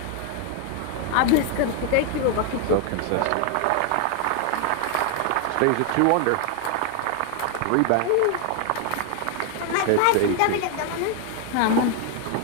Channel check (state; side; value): different; both; correlation 0.00